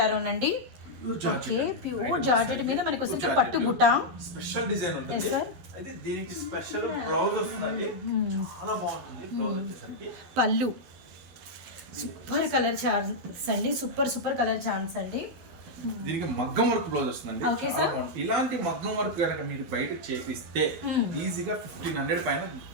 అనండి. ప్యూర్ జార్జెట్ మీద మనకి వచ్చేసి పట్టు బుట్ట స్పెషల్ డిజైన్ ఉంటుంది. అయితే దీనికి స్పెషల్ బ్లౌజ్ వస్తుందండి, చాలా బాగుంటుంది బ్లౌజ్ వచ్చేసరికి. పళ్ళు సూపర్ కలర్ చాన్స్ అండి, సూపర్ కలర్ చాన్స్ అండి. దీనికి మగ్గం వర్క్ బ్లౌజ్ వస్తుందండి. ఇలాంటి మగ్గం వర్క్ కనుక మీరు బయట చేపిస్తే ఈజీగా 1500 పైన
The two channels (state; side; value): late; left; 12 ms